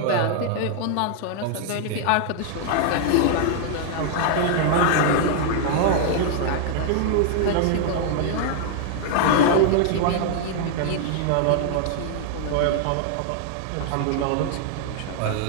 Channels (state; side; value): different; both; correlation 0.00